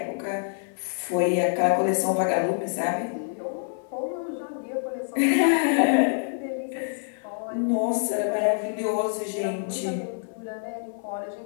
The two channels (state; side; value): silent; right; 59 dB below the other